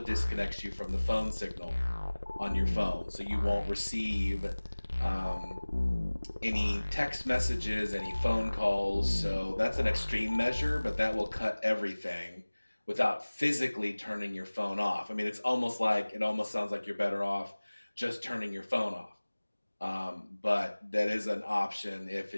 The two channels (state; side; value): inverted; both; correlation -1.00